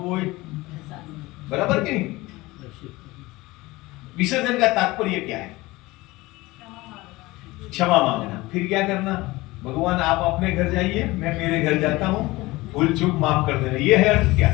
बराबर कि नहीं? विसर्जन का तात्पर्य क्या है? क्षमा मांगना। फिर क्या करना? भगवान आप अपने घर जाइए, मैं मेरे घर जाता हूँ, भूल चूक माफ कर देना। ये है अर्थ क्या?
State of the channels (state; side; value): quieter; right; 20.6 dB